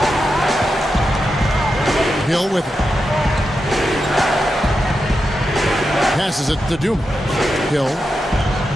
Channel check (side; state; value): both; normal; correlation 0.88